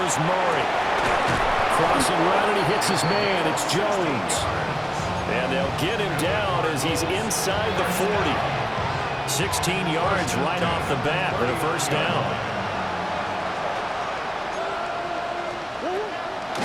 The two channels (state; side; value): identical; both; correlation 1.00